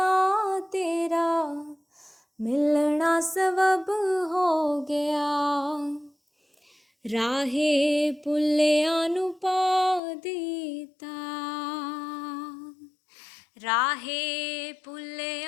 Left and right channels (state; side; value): drops out; right; at 10.0 s